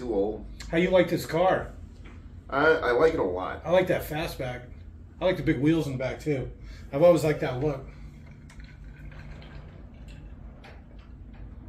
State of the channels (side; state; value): both; identical; correlation 1.00